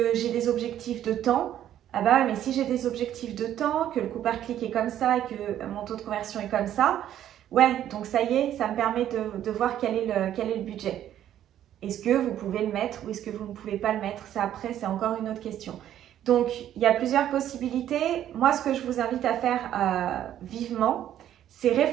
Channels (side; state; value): left; quieter; 11.3 dB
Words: des objectifs de temps. Ah bah ouais, mais si j'ai des objectifs de temps, que le coût par clic est comme ça et que mon taux de conversion est comme ça, ouais, donc ça y est, ça me permet de voir quel est le budget. Est-ce que vous pouvez le mettre ou est-ce que vous ne pouvez pas le mettre? Ça, après, c'est encore une autre question. Donc, il y a plusieurs possibilités. Moi, ce que je vous invite à faire vivement, c'est